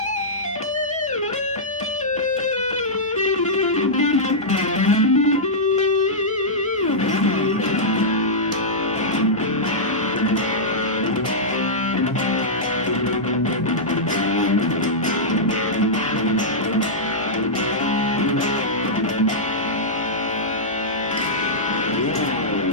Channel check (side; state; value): both; normal; correlation -0.11